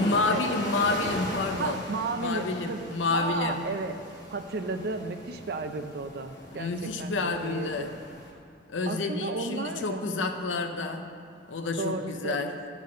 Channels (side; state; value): both; normal; correlation 0.12